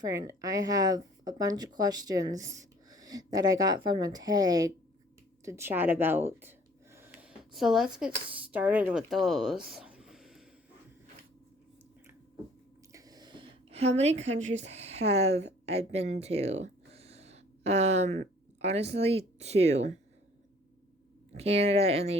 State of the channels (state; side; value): normal; both; correlation 0.55